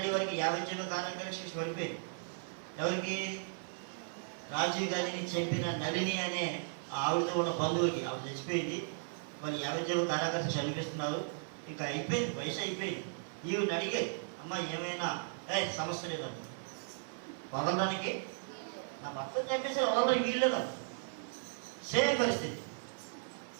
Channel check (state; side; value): silent; left; 54 dB below the other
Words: వారికి 50 జీవో కారణంగా శిక్ష పడిపోయింది. ఎవరికి? రాజీవ్ గాంధీని చంపిన నళిని అనే ఆవిడతో ఉన్న బంధువుకి. ఆవిడ చచ్చిపోయింది, వాళ్ళు 50 జీవో కారాగారం చనిపిస్తున్నారు. ఇంకా అయిపోయింది, వయసు అయిపోయింది. ఈవిడ అడిగారు, అమ్మ ఏమైనా సమస్య లేదండి, వదలడానికి నా భర్త చంపేసి వదలడానికి వీల్లేదా? సేమ్ పరిస్థితి.